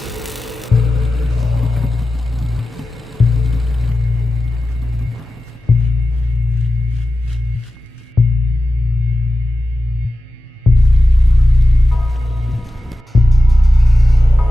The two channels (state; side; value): normal; both; correlation 0.94